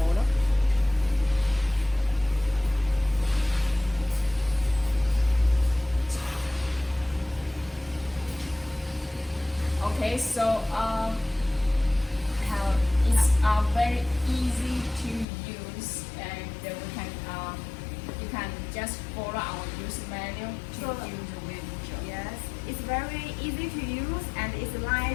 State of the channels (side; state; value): right; drops out; at 15.2 s